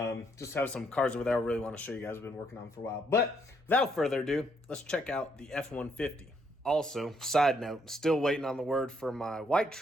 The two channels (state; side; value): normal; both; correlation 0.72